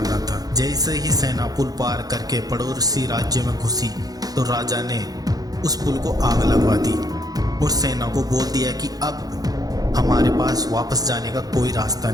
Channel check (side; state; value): left; late; 0.18 ms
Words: था। जैसे ही सेना पुल पार करके पड़ोसी राज्य में घुसी तो राजा ने उस पुल को आग लगवा दी और सेना को बोल दिया कि अब हमारे पास वापस जाने का कोई रास्ता